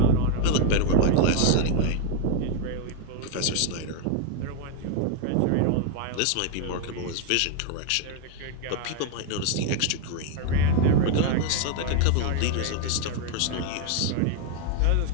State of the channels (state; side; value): different; both; correlation 0.01